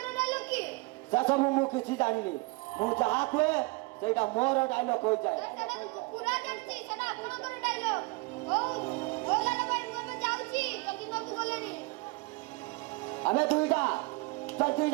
ଡାଇଲଗ କି ସେ ସବୁ ମୁଁ କିଛି ଜାଣିନି ମୁଁ ଯାହା କୁହେ ସେଇଟା ମୋର ଡାଇଲଗ ହୋଇଯାଏ ସେଟା ମୁଁ ପୁରା ଜାଣିଛି ସେଟା ଆପଣଙ୍କର ଡାଇଲଗ ହଉ ଲାଲା ଭାଇ ମୁଁ ଏବେ ଯାଉଛି ଜ୍ୟୋତି ବାବୁ ଗଲେଣି ଆମେ ଦୁଇଟା ଜଲ୍ଦି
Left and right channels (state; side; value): quieter; left; 25.6 dB